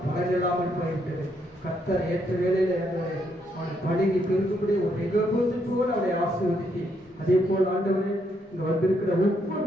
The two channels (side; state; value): both; normal; correlation 0.75